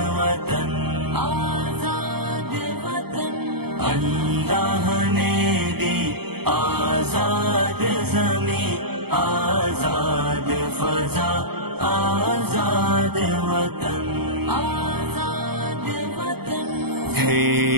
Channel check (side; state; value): left; late; 0.96 ms